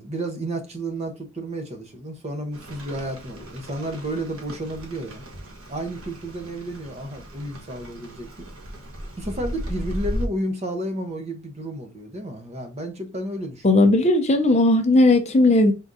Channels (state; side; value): normal; both; correlation 0.60